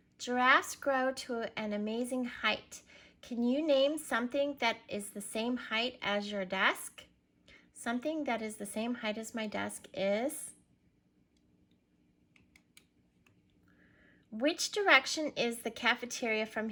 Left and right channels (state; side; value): identical; both; correlation 1.00